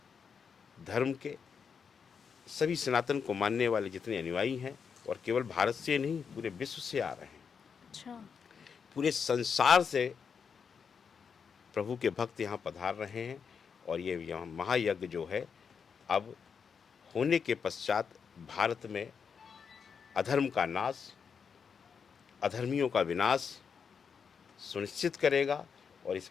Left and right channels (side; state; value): right; quieter; 6.4 dB